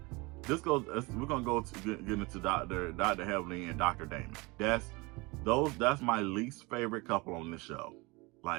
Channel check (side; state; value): left; quieter; 25.3 dB